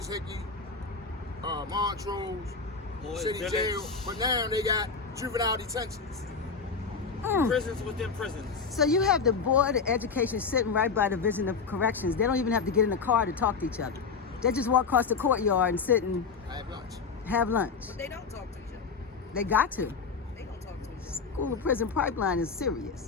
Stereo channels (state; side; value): quieter; right; 5.2 dB